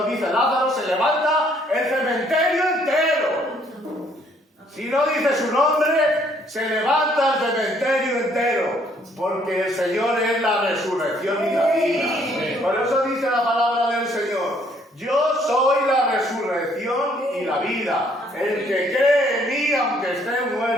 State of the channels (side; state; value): both; normal; correlation 0.65